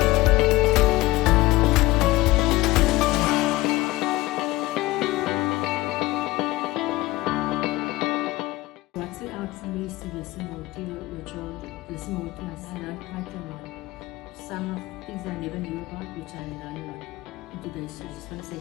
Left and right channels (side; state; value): right; quieter; 19.1 dB